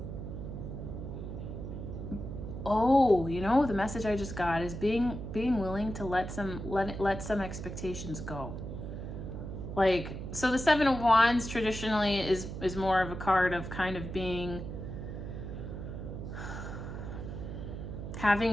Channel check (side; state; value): right; noise; hum, 7 dB below the sound